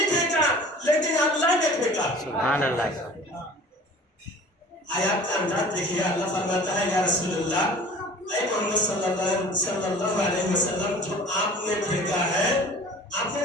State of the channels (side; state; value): both; normal; correlation 0.45